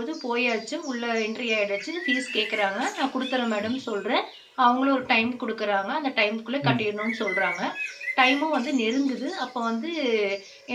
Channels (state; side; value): identical; both; correlation 1.00